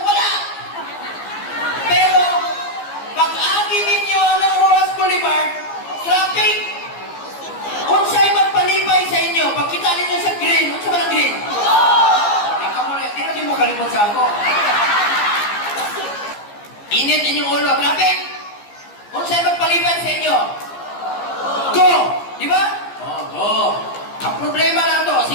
Pero, pag-agi ninyo ng Rojas Boulevard, traffic, unsay magpalibay sa inyo, pagkita ninyo sa green, unsa ba ng green? Di na mo kalimot sa ako. Init inyong ulo, traffic, unsay magpalibay sa inyo? Go! Di ba? Go! Ang problema lang to,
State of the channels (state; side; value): late; right; 15 ms